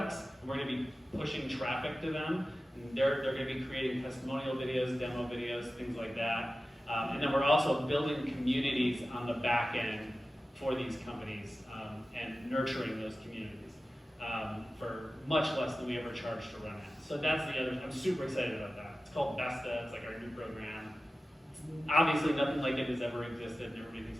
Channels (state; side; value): normal; both; correlation 0.95